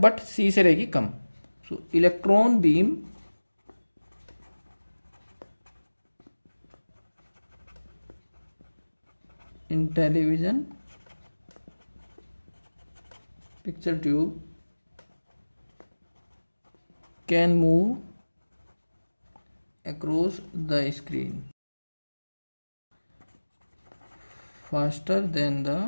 सी से रहेगी कम। So electron beam in television picture tube can move across the screen faster than the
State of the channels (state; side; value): inverted; both; correlation -1.00